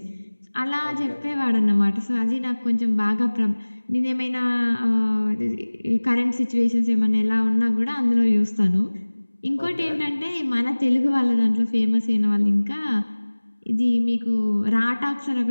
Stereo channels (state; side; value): inverted; both; correlation -1.00